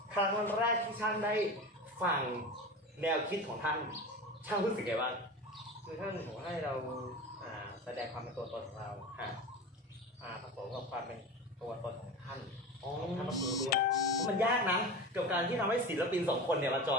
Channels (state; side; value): normal; both; correlation 0.29